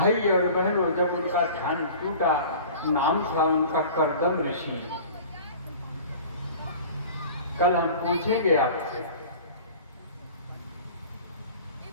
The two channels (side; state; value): both; inverted; correlation -0.42